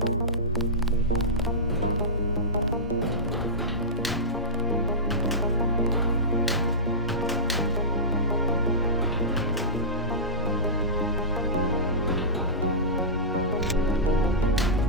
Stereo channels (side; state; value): both; normal; correlation -0.17